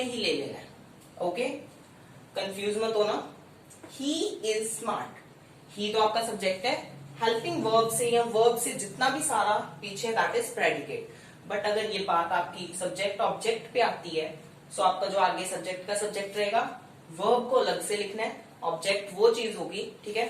ही ले लेना है। ओके, कंफ्यूज मत होना। ही इज स्मार्ट, ही तो आपका सब्जेक्ट है, हेल्पिंग वर्ब से या वर्ब से जितना भी सारा पीछे दैट इज प्रेडिकेट। बट अगर ये बात आपकी सब्जेक्ट ऑब्जेक्ट पे आती है, सो आपका जो आगे सब्जेक्ट का सब्जेक्ट रहेगा, वर्ब को अलग से लिखना है, ऑब्जेक्ट वो चीज होगी, ठीक है।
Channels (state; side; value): identical; both; correlation 1.00